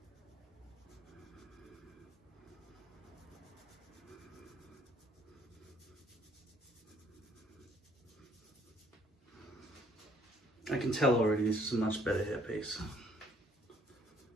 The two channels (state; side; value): normal; both; correlation 0.64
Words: I can tell already this is a much better hairpiece.